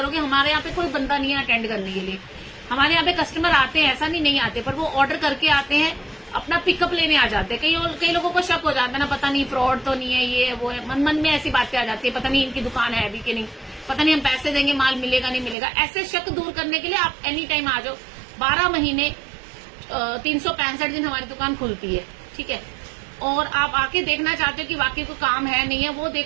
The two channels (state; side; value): drops out; left; at 15.6 s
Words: हमारे यहाँ पे कोई बंदा नहीं है अटेंड करने के लिए। हमारे यहाँ पे कस्टमर आते हैं, ऐसा नहीं आते, पर वो ऑर्डर करके आते हैं, अपना पिकअप लेने आ जाते हैं। कई लोगों को शक हो जाता है ना, पता नहीं फ्रॉड तो नहीं है, ये वो है, मन में ऐसी बातें आ जाती है, पता नहीं इनकी दुकान है अभी कि नहीं, पता नहीं हम पैसे देंगे माल मिलेगा नहीं मिलेगा। ऐसे शक दूर करने के लिए आप एनी टाइम आ जाओ। 12 महीने 365 दिन हमारी दुकान खुलती है, ठीक है। और आप आके देखना चाहते हो कि वाकई को काम है नहीं है, वो